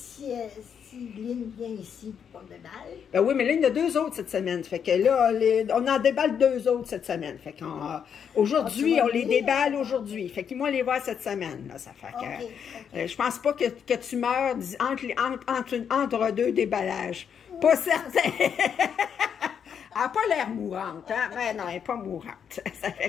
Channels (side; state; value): right; quieter; 7.7 dB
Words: si Lynn vient ici pour qu'on déballe. Ben oui, mais là, il y en a 2 autres cette semaine. Fait que là, on en déballe 2 autres cette semaine. Fait qu'aujourd'hui, on les déballe aujourd'hui. Fait qu'ils vont les voir cette semaine. Là, ça fait que je pense pas que tu meurs entre 2 déballages. Pas certain. Elle n'a pas l'air mourante, hein? Mais non, elle n'est pas mourante. Ça